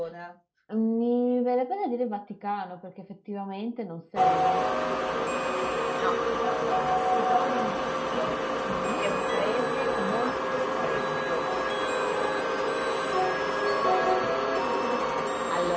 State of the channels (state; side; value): identical; both; correlation 1.00